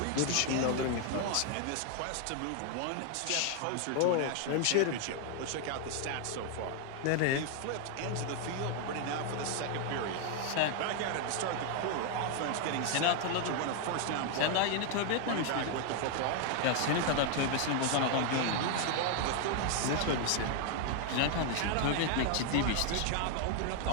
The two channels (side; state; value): both; different; correlation 0.00